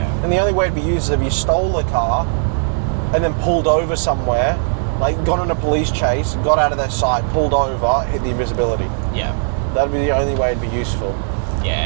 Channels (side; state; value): left; silent; digital silence